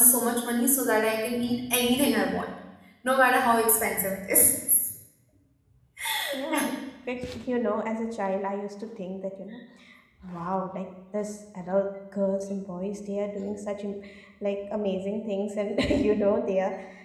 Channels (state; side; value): identical; both; correlation 1.00